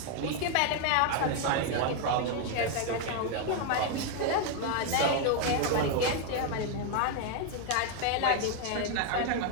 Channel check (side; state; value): both; different; correlation 0.01